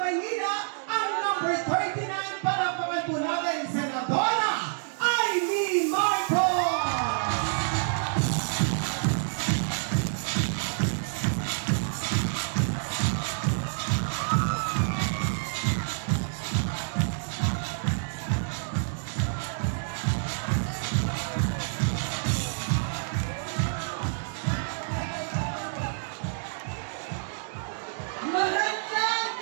ang number 39, palapakan po natin, Senadora Amy Marcos!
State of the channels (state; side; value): silent; left; digital silence